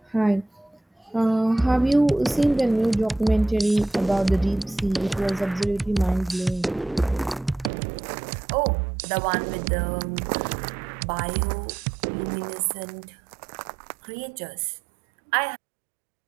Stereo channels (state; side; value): drops out; left; at 7.7 s